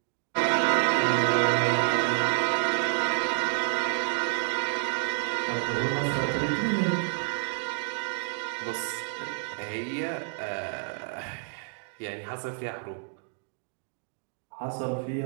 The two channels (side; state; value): left; silent; digital silence